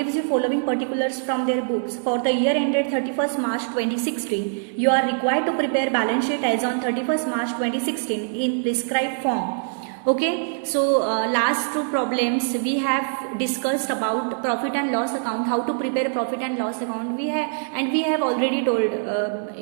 you following particulars from their books. For the year ended 31st March 2016, you are required to prepare balance sheet as on 31st March 2016 in prescribed form. Okay, so last two problems we have discussed about profit and loss account, how to prepare profit and loss account. We have already told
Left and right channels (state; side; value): silent; left; digital silence